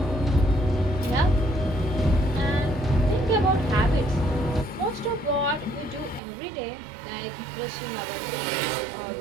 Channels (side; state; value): left; drops out; at 6.2 s